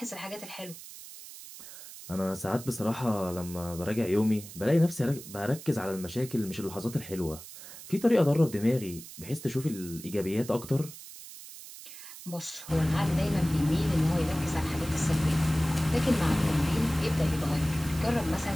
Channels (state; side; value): noise; right; hiss, 15 dB below the sound